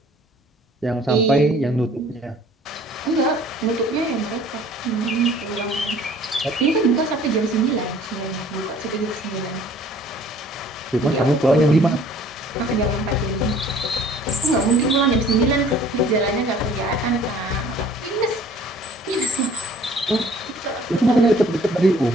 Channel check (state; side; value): normal; both; correlation 0.54